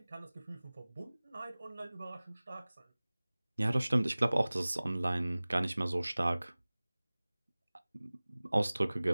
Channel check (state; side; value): inverted; both; correlation -0.99